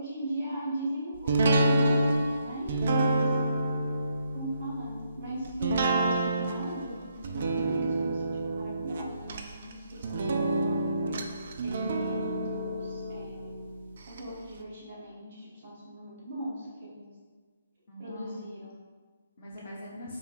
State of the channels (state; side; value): inverted; both; correlation -0.75